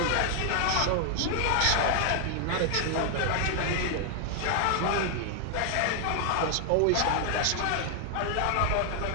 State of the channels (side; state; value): both; different; correlation 0.00